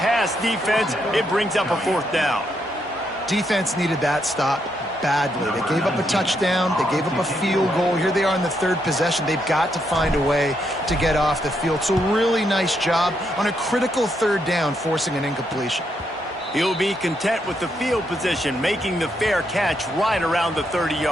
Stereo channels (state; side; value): normal; both; correlation 0.78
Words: defense. It brings up a fourth down. Defense needed that stop badly. They gave up a touchdown. They gave up a field goal. Here they are in the third possession. They've got to find a way to get off the field. So really nice job on a critical third down, forcing an incompletion. He'll be content with the field position, making the fair catch right around the